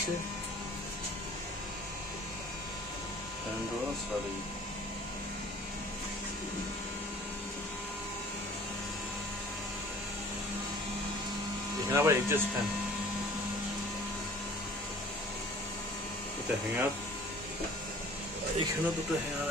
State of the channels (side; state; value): both; normal; correlation 0.49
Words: এখানে আবার এডজাস্ট ফ্যান, এটা হ্যাঙ্গার, এখানেও দুটো হ্যাঙ্গার